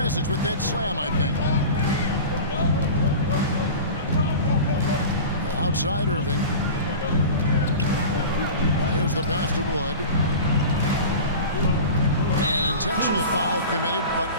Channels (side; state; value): both; inverted; correlation -0.33